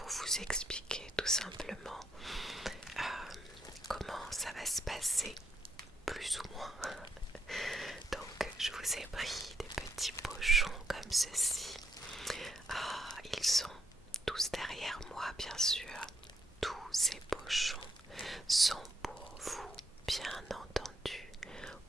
vous expliquer tout simplement comment ça va se passer, plus ou moins. Donc je vous ai pris des petits pochons comme ceci. Ils sont tous derrière moi, bien sûr. Tous ces pochons sont pour vous, bien entendu,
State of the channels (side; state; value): both; normal; correlation 0.75